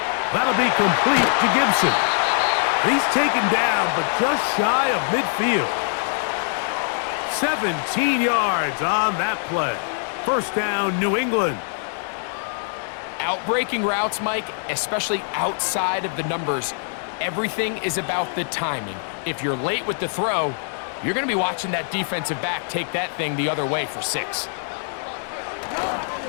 That'll be complete to Gibson. He's taken down, but just shy of midfield. 17 yards on that play. First down, New England. Outbreaking routes, Mike, especially outside of the numbers, everything is about the timing. If you're late with the throw, you're going to be watching that defensive back take that thing the other way for 6.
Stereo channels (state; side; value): silent; right; 63 dB below the other